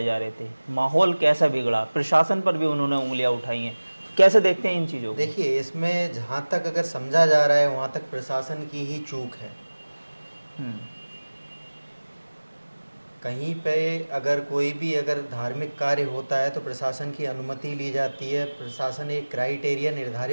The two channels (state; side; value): inverted; both; correlation -1.00